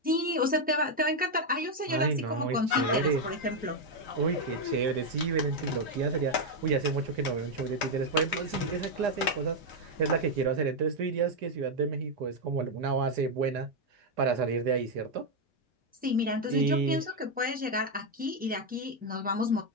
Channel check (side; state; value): both; normal; correlation 0.02